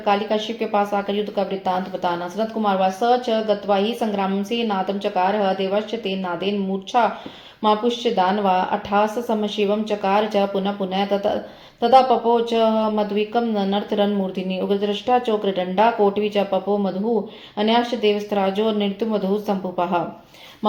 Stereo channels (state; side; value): identical; both; correlation 1.00